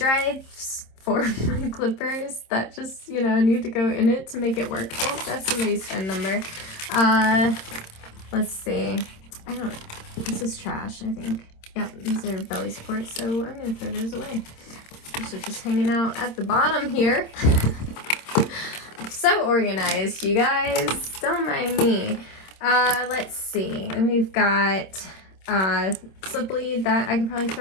for my clippers that just, you know, need to go in it to make it work. Oh, that's somebody's phone number. Let's see. This is trash, I think. Yep, these are belly supports, so I'm gonna throw those away. These are just hanging out at the bottom here. So organized, you guys. Don't mind me. Let's see. And we've got slip lead that I could probably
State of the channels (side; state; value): right; late; 26 ms